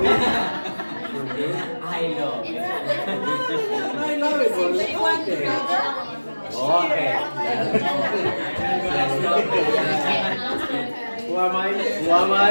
I know. I love it. Okay. Who am I? Who am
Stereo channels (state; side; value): inverted; both; correlation -1.00